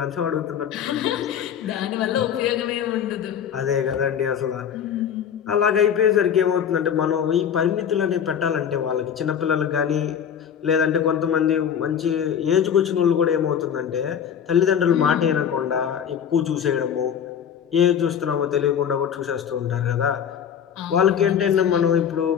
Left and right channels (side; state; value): right; quieter; 8.4 dB